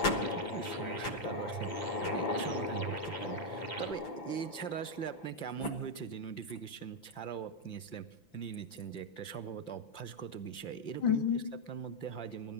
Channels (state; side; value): late; right; 5.9 ms